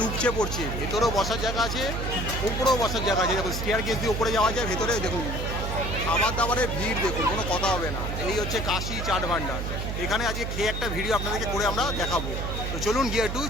উপচে পড়ছে। ভেতরেও বসার জায়গা আছে, উপরেও বসার জায়গা আছে। দেখুন স্টেয়ার কেস দিয়ে উপরে যাওয়া যায়, ভেতরে দেখুন খাবার দাবারের ভিড় দেখুন, কোনো কথা হবে না। এই হচ্ছে কাশি চাট ভান্ডার। এখানে আজকে খেয়ে একটা ভিডিও আপনাদেরকে করে আমরা দেখাবো। তো চলুন গিয়ে একটু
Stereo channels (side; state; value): right; noise; hum, 3 dB below the sound